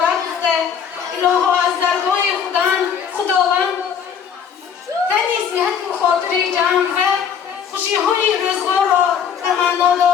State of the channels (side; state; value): right; quieter; 7.6 dB